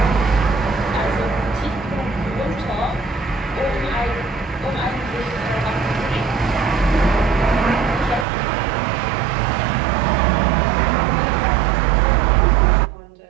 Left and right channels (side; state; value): left; drops out; at 8.2 s